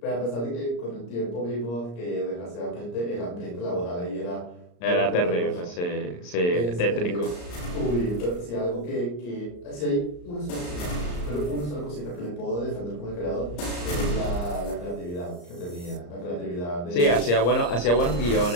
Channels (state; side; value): late; right; 34 ms